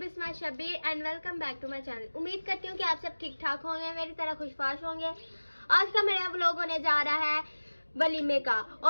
Shabir and welcome back to my channel. उम्मीद करती हूँ कि आप सब ठीक ठाक होंगे, मेरी तरह खुशबाश होंगे। आज का मेरा व्लॉग होने जा रहा है वलीमे का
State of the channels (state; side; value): inverted; both; correlation -1.00